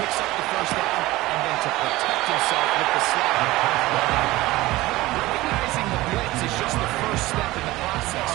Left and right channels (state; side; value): quieter; left; 18.5 dB